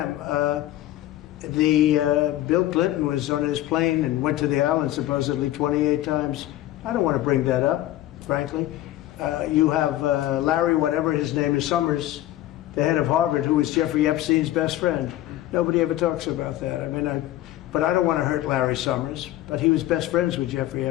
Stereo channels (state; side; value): quieter; right; 14.6 dB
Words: Bill Clinton was on his plane and went to the island supposedly 28 times. I don't want to bring that up, frankly. You have Larry, whatever his name is, Summers, the head of Harvard, who was Jeffrey Epstein's best friend. Nobody ever talks about that. I mean, but I don't want to hurt Larry Summers, but he was best friends with Jeffrey